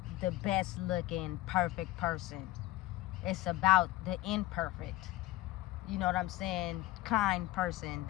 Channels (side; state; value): right; quieter; 16.7 dB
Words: the best looking perfect person. It's about the imperfect, you know what I'm saying, kind person